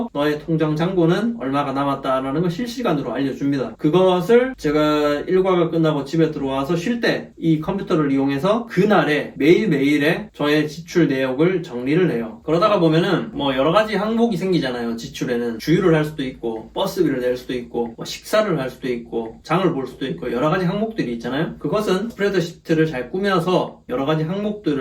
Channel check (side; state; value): both; identical; correlation 1.00